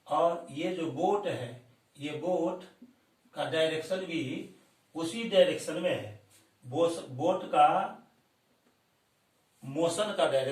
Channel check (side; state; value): both; identical; correlation 1.00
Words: और ये जो बोट है, ये बोट का डायरेक्शन भी उसी डायरेक्शन में है। बोट का मोशन का